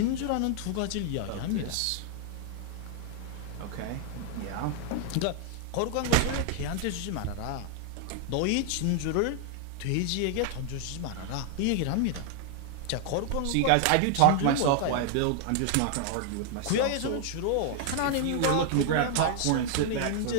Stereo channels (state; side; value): different; both; correlation 0.00